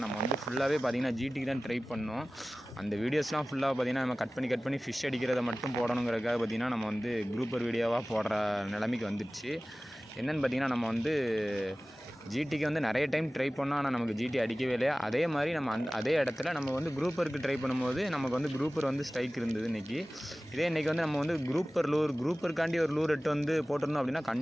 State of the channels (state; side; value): normal; both; correlation 0.97